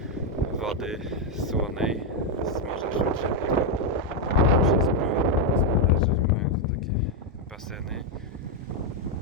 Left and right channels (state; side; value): normal; both; correlation 0.02